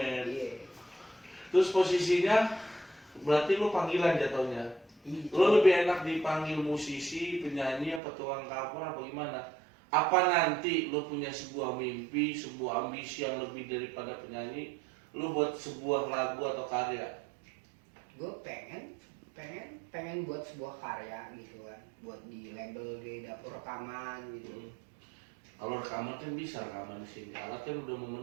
Iya. Terus posisinya berarti lu panggilan jatuhnya. Iya. Lu lebih enak dipanggil musisi, penyanyi, apa tukang cover apa gimana? Apa nanti lu punya sebuah mimpi, sebuah ambisi yang lebih daripada penyanyi, lu buat sebuah lagu atau karya? Gue pengen buat sebuah karya gitu kan, buat di label di dapur rekaman gitu. Kalau rekaman kan bisa rekaman di sini, alat kan udah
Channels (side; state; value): left; drops out; at 8.0 s